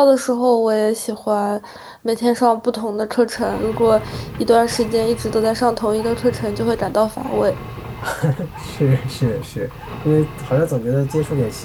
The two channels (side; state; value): both; identical; correlation 1.00